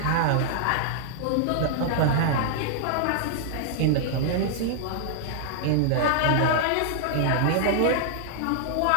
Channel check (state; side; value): different; both; correlation -0.01